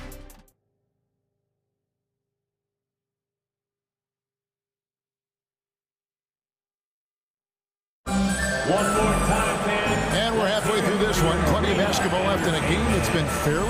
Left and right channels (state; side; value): identical; both; correlation 1.00